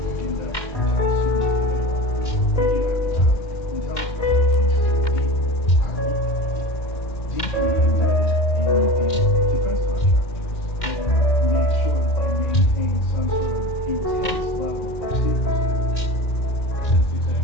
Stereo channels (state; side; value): late; right; 2.1 ms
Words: in that how soon they are. But you have to have intelligence agencies I hope, deeply embedded in these defense contractors and make sure that they maintain some sort of intense level of secrecy. That's